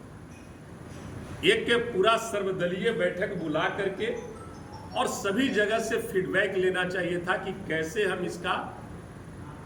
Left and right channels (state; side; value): identical; both; correlation 1.00